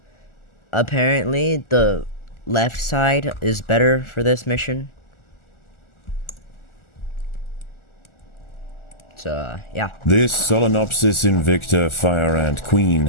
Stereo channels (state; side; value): late; right; 1.4 ms